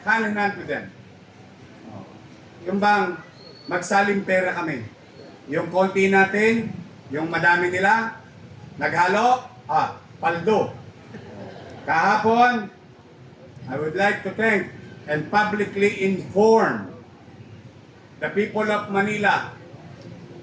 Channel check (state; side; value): identical; both; correlation 1.00